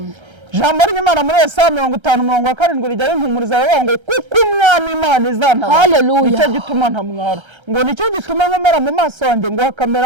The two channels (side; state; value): left; late; 1.3 ms